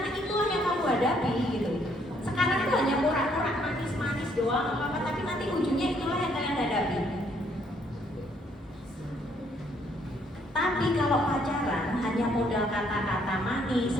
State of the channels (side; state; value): both; normal; correlation 0.68